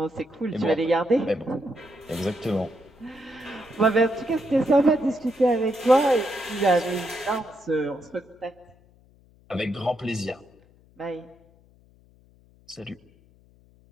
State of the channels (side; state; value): left; noise; hum, 29 dB below the sound